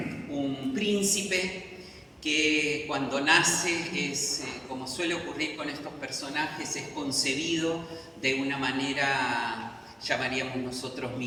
príncipe que cuando nace es, como suele ocurrir con estos personajes, es concebido de una manera, llamaríamos nosotros,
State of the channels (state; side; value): identical; both; correlation 1.00